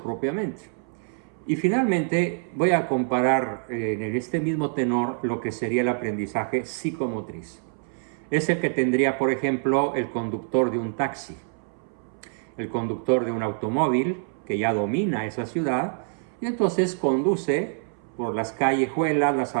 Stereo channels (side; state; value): left; silent; 61 dB below the other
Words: Y finalmente voy a comparar en este mismo tenor lo que sería el aprendizaje psicomotriz. Es el que tendría, por ejemplo, el conductor de un taxi, el conductor de un automóvil que ya domina esa ciudad y entonces conduce por las callejuelas, las